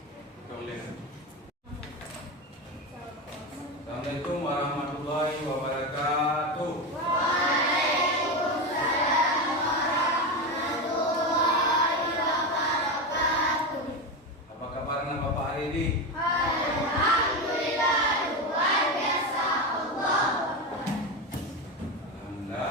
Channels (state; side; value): normal; both; correlation 0.17